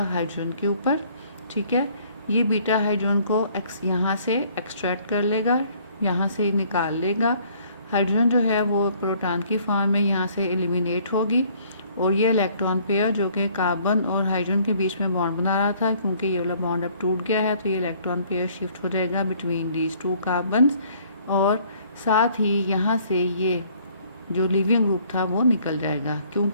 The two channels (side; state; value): both; inverted; correlation -0.60